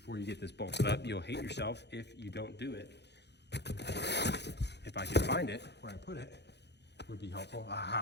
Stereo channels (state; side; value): late; right; 0.50 ms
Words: you get this bolted up. You'll hate yourself if you don't do it. If I could find it, where I put it, would be helpful.